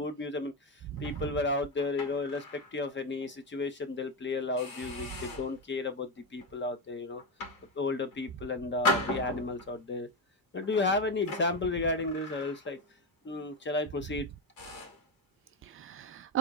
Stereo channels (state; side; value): normal; both; correlation 0.12